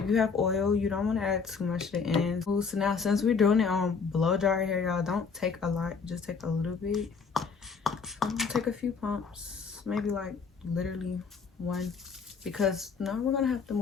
you have oil, you don't want to add too much to the ends. So now, since we're doing it on blow dry hair, y'all, don't take a lot, just take a little bit. I'm gonna take a few pumps, maybe like literally one, because now we're gonna have to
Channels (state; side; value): quieter; right; 5.4 dB